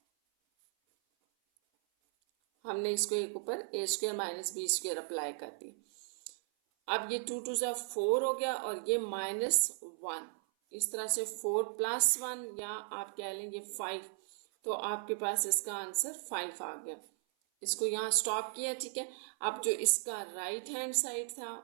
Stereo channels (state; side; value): silent; left; 54 dB below the other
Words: हमने इसको एक ऊपर a² - b² अप्लाई कर दी। अब ये 2 × 4 हो गया और ये -1, इस तरह से 4 + 1 या आप कह लेंगे 5। तो आपके पास इसका आंसर 5 आ गया। इसको यहाँ स्टॉप किया, ठीक है। अब जो इसका राइट हैंड साइड